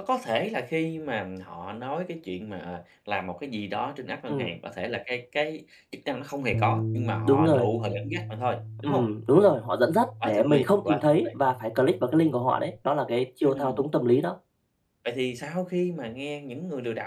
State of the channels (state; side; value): identical; both; correlation 1.00